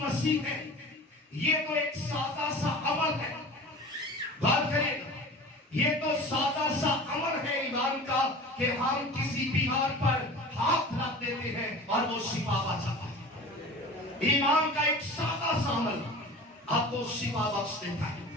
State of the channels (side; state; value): both; normal; correlation 0.38